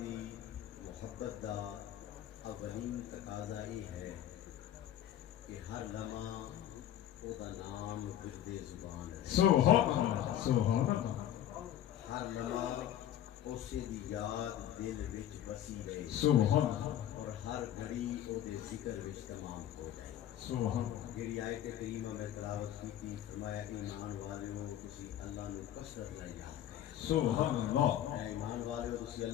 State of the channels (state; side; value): quieter; right; 11.4 dB